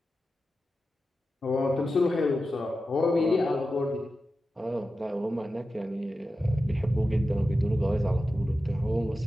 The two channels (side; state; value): both; normal; correlation 0.92